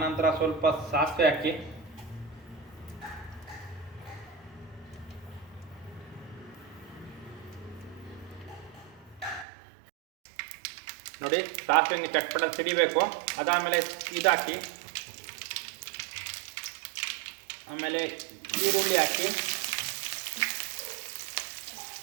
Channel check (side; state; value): left; drops out; at 9.5 s